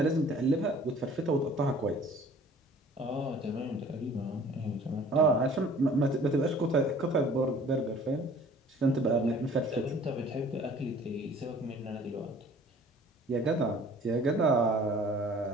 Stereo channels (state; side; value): normal; both; correlation 0.51